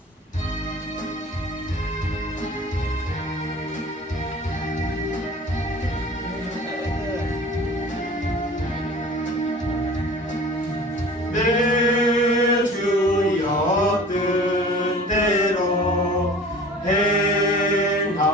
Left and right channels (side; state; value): both; normal; correlation 0.43